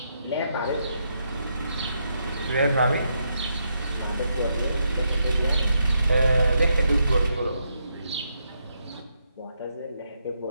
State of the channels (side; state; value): both; inverted; correlation -0.80